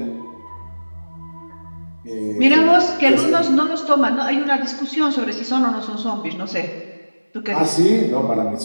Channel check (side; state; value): both; inverted; correlation -1.00